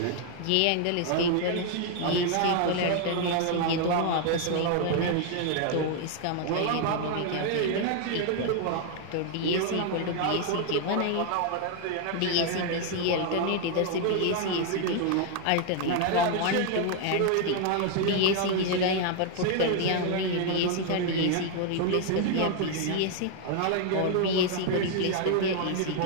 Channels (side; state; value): both; different; correlation 0.00